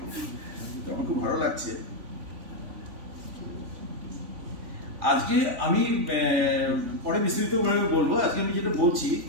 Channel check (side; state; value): left; late; 3.5 ms